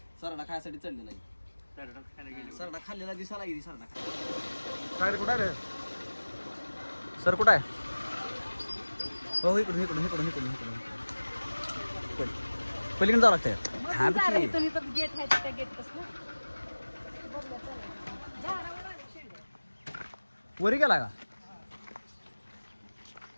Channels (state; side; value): inverted; both; correlation -1.00